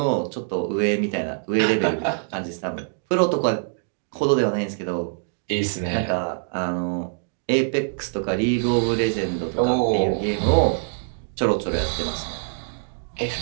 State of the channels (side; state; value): left; silent; digital silence